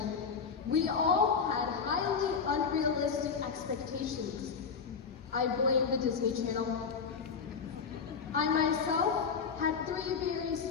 we all had highly unrealistic expectations. I blame the Disney Channel. I myself had 3 very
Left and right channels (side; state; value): right; quieter; 5.9 dB